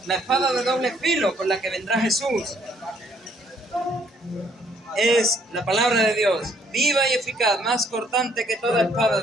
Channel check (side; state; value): both; normal; correlation 0.66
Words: La espada de doble filo con la que vendrá Jesús es la palabra de Dios, viva y eficaz, más cortante que toda espada